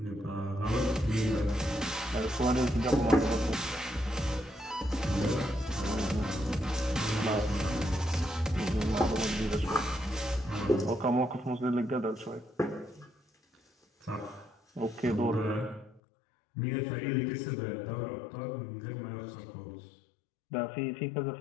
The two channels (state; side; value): drops out; right; at 16.0 s